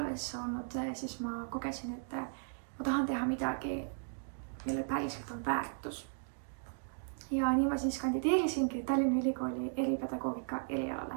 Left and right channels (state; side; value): silent; left; digital silence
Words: olnud, siis ma kogesin, et ma tahan teha midagi, mille päriselt on väärtus. Ja nii ma siis kandideerisingi Tallinna Ülikooli eripedagoogika erialale.